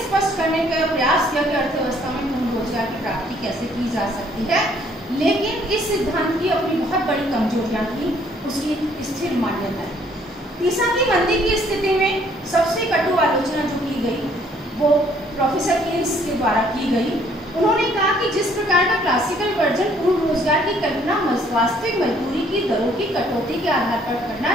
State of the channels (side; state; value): both; normal; correlation 0.63